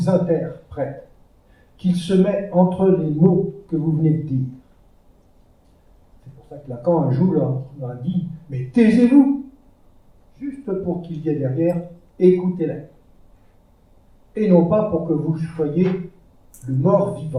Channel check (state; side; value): identical; both; correlation 1.00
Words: interprète, qu'il se met entre les mots que vous venez de dire. C'est pour ça que Lacan, un jour, leur a dit « Mais taisez-vous !» Juste pour qu'il y ait derrière « Écoutez-la !» Et non pas pour que vous soyez le